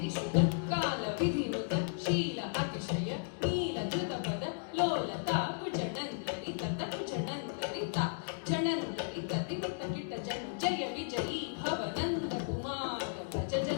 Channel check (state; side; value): silent; right; digital silence